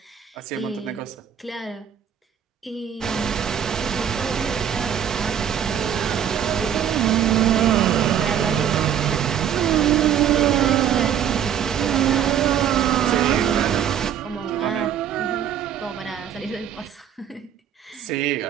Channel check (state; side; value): quieter; left; 9.1 dB